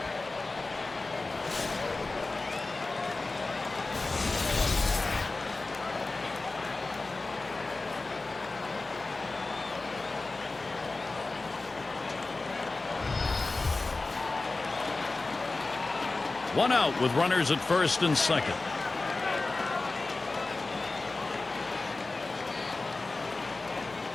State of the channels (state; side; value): quieter; right; 3.4 dB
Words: One out with runners at first and second.